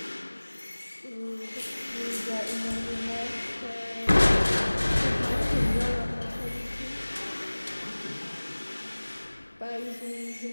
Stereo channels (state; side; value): inverted; both; correlation -1.00